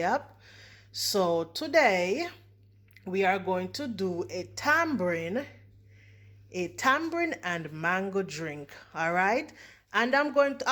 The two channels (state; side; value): identical; both; correlation 1.00